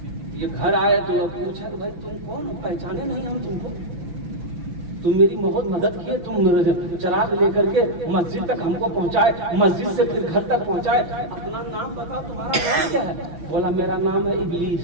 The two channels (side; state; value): left; late; 5.9 ms